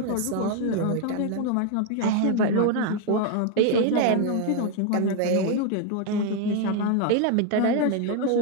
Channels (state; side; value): different; both; correlation 0.01